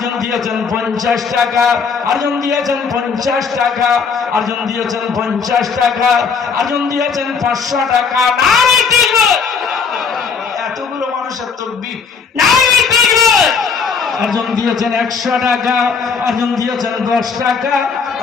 দিয়েছেন 50 টাকা, আরজন দিয়েছেন 50 টাকা, আরজন দিয়েছেন 50 টাকা, আরজন দিয়েছেন 500 টাকা। নারে তাকবীর! এতগুলো মানুষের তাকবীর, নারে তাকবীর! আরজন দিয়েছেন 100 টাকা, আরজন দিয়েছেন 10 টাকা,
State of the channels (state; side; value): quieter; right; 5.7 dB